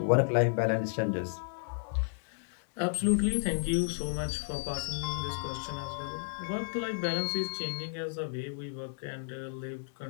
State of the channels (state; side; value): silent; right; digital silence